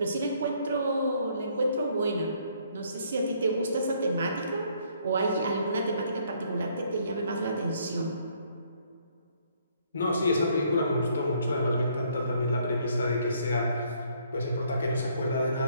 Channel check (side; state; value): both; inverted; correlation -0.66